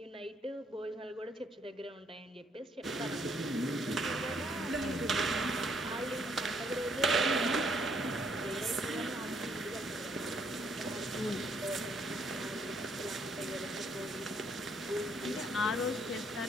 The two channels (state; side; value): normal; both; correlation 0.68